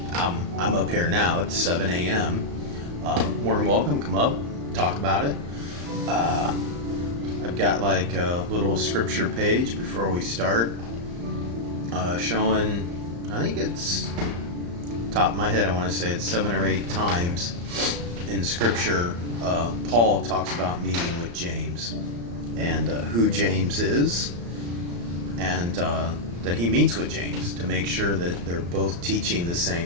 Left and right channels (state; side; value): late; left; 35 ms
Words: I'm up here now. It's 7 a.m. More than welcome. Come up, talk about it. I've got like a little scripture page before we start, showing, I think it's, top of my head, I want to say it's 7 or 8 times in scripture, Paul talks about meeting with James and who James is, and that he meets with James to make sure that they're both teaching the